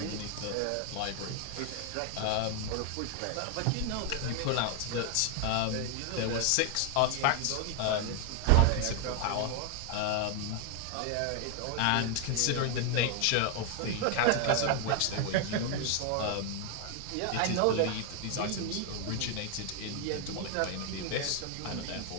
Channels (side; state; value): both; different; correlation 0.01